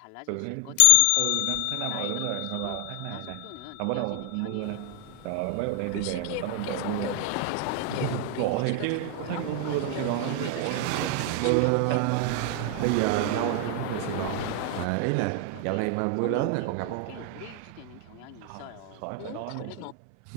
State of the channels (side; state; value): both; different; correlation 0.00